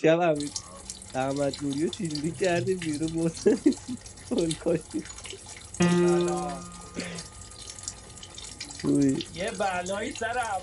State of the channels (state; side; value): identical; both; correlation 1.00